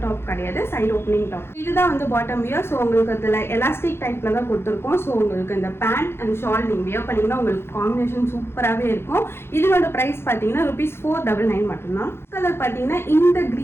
டாப் கிடையாது, சைட் ஓப்பனிங் டாப். இதுதான் வந்து பாட்டம் வியர். ஸோ உங்களுக்கு அதில் எலாஸ்டிக் டைப்பில் தான் கொடுத்துருக்கோம். ஸோ உங்களுக்கு இந்த பேண்ட் அண்ட் ஷால் நீங்கள் வியர் பண்ணிங்கன்னா உங்களுக்கு காம்பினேஷன் சூப்பராகவே இருக்கும். இதோட ப்ரைஸ் பார்த்தீங்கன்னா ₹499 மட்டும்தான். கலர் பார்த்தீங்கன்னா இந்த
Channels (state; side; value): late; right; 0.12 ms